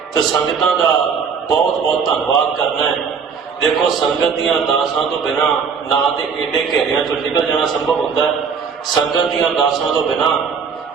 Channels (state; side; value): quieter; left; 6.1 dB